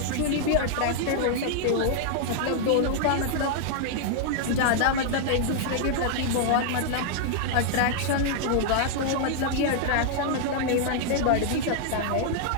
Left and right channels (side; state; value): both; different; correlation -0.01